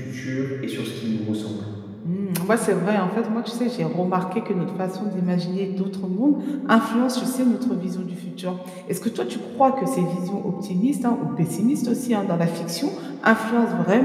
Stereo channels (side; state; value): both; identical; correlation 1.00